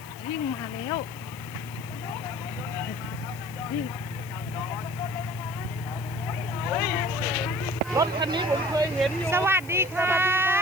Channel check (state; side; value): noise; left; hiss, 19 dB below the sound